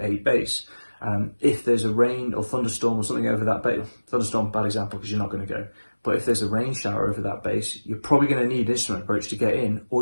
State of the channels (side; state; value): both; inverted; correlation -1.00